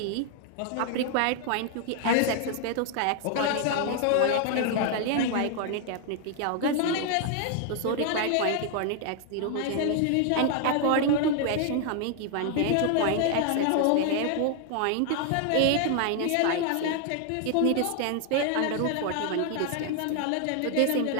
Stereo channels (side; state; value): both; different; correlation 0.00